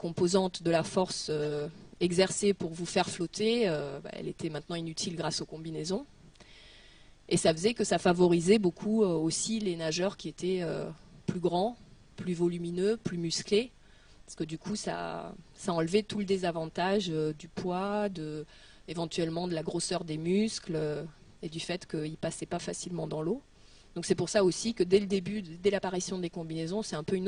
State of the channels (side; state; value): both; identical; correlation 1.00